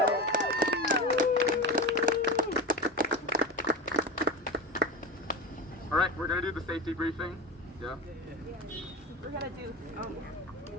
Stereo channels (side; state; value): both; normal; correlation 0.23